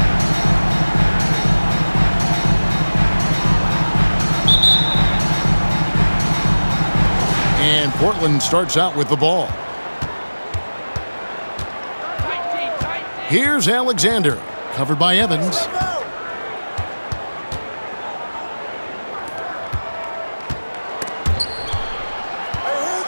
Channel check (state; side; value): inverted; both; correlation -1.00